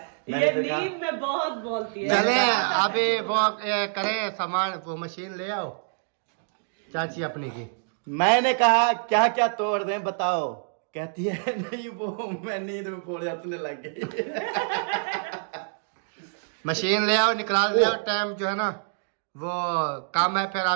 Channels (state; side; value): silent; left; digital silence